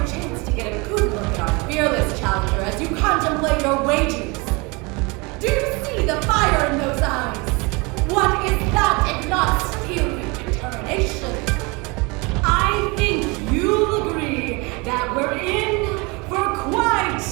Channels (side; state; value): left; quieter; 27.5 dB